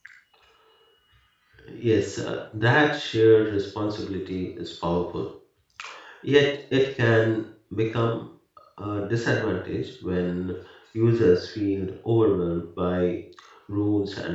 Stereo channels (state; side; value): identical; both; correlation 1.00